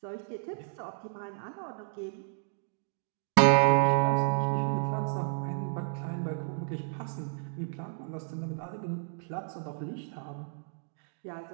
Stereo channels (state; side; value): silent; left; digital silence